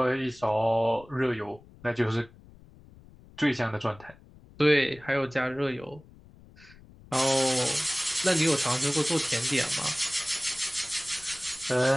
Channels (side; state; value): left; noise; rumble, 23 dB below the sound